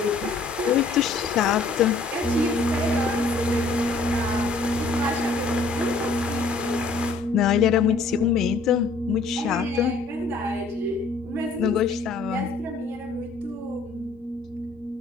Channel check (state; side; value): quieter; right; 3.7 dB